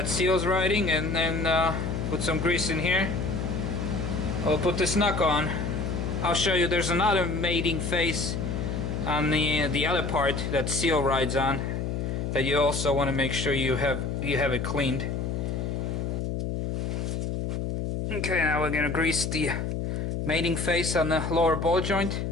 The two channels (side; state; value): left; noise; hum, 2 dB below the sound